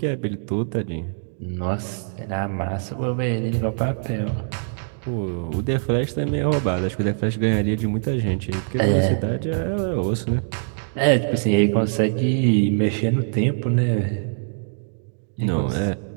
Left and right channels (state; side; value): silent; left; digital silence